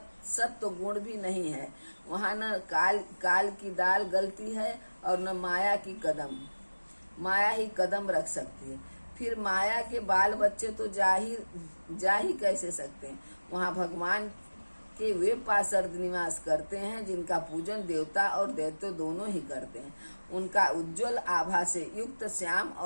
सत्व गुण भी नहीं है। वहाँ न काल की दाल गलती है और न माया ही कदम रख सकती है। फिर माया के बाल बच्चे तो जा ही कैसे सकते हैं। वहाँ भगवान के वे पार्षद निवास करते हैं जिनका पूजन देवता और दैत्य दोनों ही करते हैं। उनका उज्जवल आभा से युक्त श्याम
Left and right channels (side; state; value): both; inverted; correlation -1.00